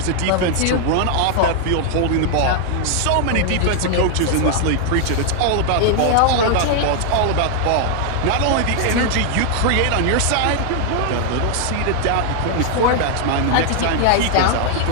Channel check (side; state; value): both; different; correlation 0.00